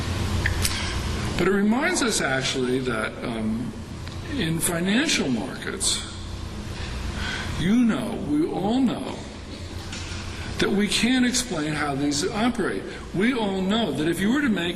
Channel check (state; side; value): identical; both; correlation 1.00